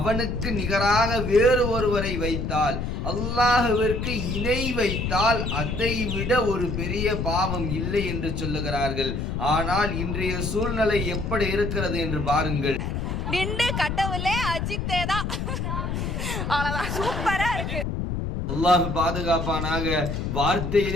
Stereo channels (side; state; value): left; noise; rumble, 2 dB below the sound